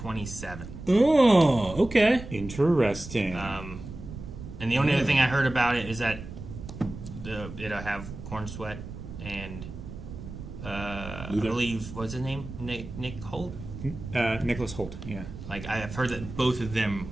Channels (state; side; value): noise; right; rumble, 11 dB below the sound